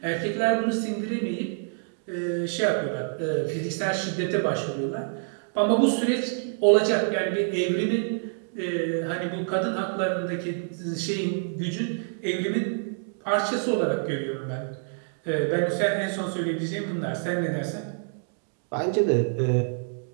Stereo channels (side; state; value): left; silent; digital silence